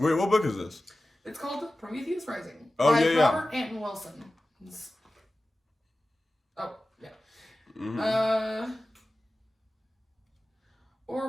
what book is this? It's called Prometheus Rising by Robert Anton Wilson. Oh yeah. Mm-hmm.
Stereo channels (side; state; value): both; normal; correlation 0.95